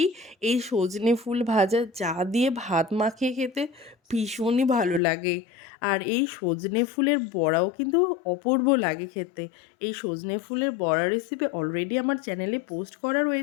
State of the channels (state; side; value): drops out; right; at 5.0 s